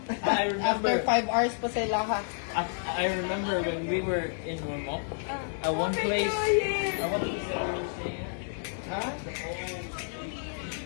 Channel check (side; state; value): right; silent; digital silence